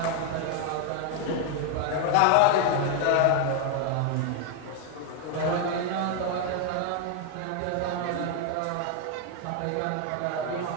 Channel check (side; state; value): both; different; correlation 0.01